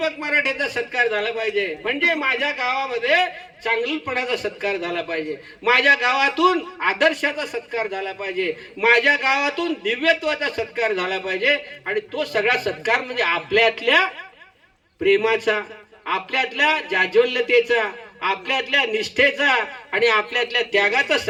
मराठेचा सत्कार झाला पाहिजे. म्हणजे माझ्या गावामध्ये चांगलपणाचा सत्कार झाला पाहिजे, माझ्या गावातून आदर्शाचा सत्कार झाला पाहिजे, माझ्या गावातून दिव्यत्वाचा सत्कार झाला पाहिजे. आणि तो सगळा सत्कार म्हणजे आपल्यातल्या प्रेमाचा, आपल्यातल्या जाज्वल्यतेचा, आपल्यातल्या निष्ठेचा आणि आपल्यातल्या त्यागाचा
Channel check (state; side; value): identical; both; correlation 1.00